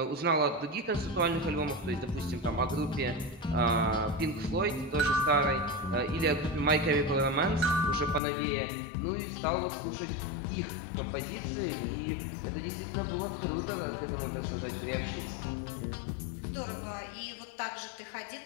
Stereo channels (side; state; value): right; drops out; at 8.2 s